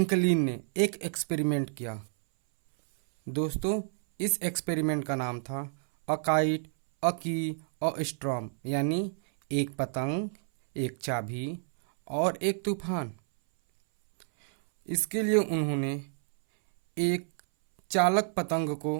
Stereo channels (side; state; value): left; silent; 58 dB below the other